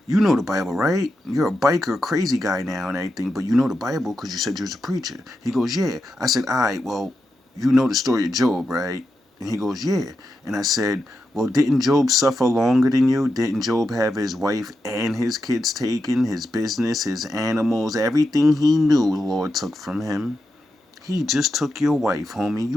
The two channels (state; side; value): normal; both; correlation 0.87